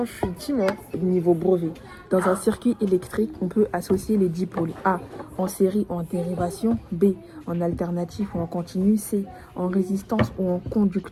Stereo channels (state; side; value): identical; both; correlation 1.00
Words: que je suis petit, moi? Niveau brevet. Dans un circuit électrique, on peut associer les dipôles. A. En série ou en dérivation. B. En alternatif ou en continu. C. En résistance ou en